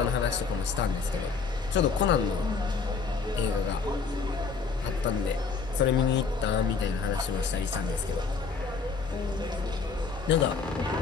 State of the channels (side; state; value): right; quieter; 5.0 dB